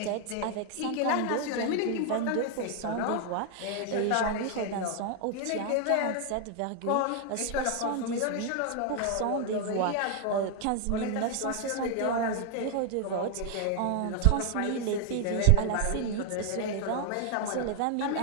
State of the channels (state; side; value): different; both; correlation 0.00